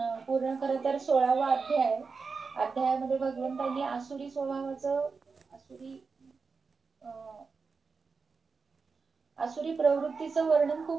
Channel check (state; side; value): quieter; left; 4.8 dB